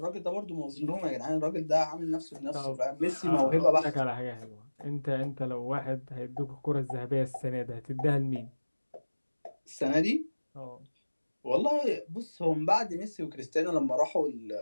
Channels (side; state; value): both; inverted; correlation -1.00